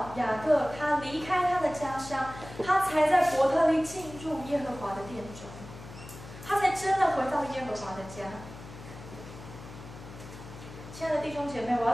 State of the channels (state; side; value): noise; left; hum, 15 dB below the sound